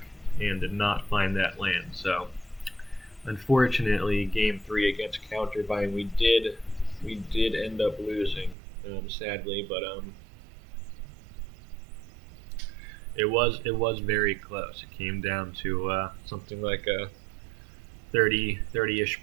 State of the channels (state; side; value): drops out; left; at 8.6 s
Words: and did not find that land. So unfortunately, game 3 against Counterbind, we did end up losing, sadly, but it was very close. It came down to something like a